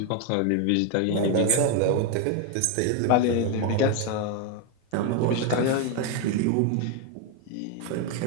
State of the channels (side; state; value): both; different; correlation 0.01